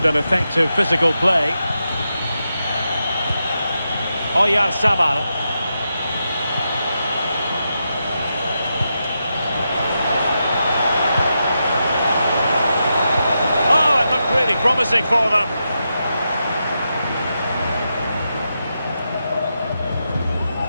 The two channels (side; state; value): both; inverted; correlation -0.87